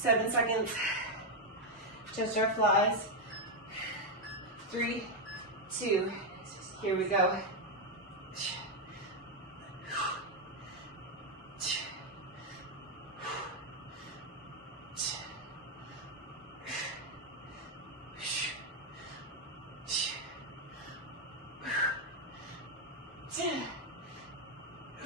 seconds. Just our flies. 3, 2. Here we go. 10.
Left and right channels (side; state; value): both; normal; correlation 0.02